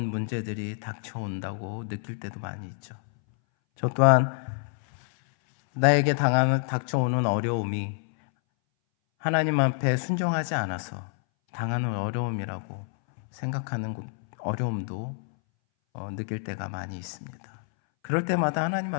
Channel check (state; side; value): silent; right; 60 dB below the other